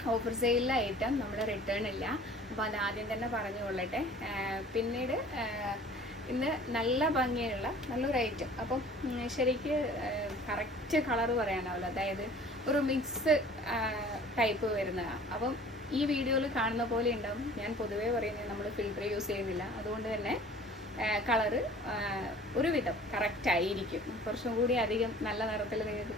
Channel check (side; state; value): both; normal; correlation 0.48